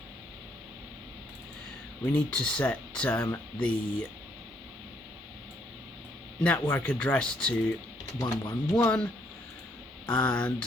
we need to set the network address to 111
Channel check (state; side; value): normal; both; correlation 0.70